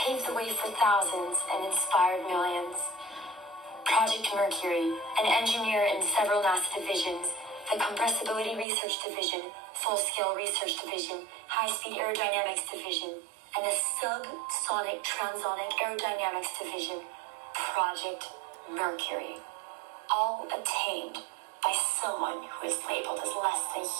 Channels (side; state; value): left; drops out; at 8.7 s